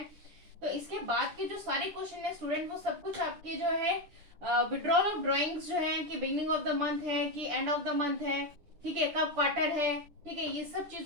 तो इसके बाद के जो सारे क्वेश्चन है स्टूडेंट, वो सब कुछ आपके जो है विड्रॉल ऑफ ड्रॉइंग्स जो है, कि बिगनिंग ऑफ द मंथ है कि एंड ऑफ द मंथ है, ठीक है, कब क्वार्टर है, ठीक है, ये सब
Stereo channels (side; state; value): left; late; 10 ms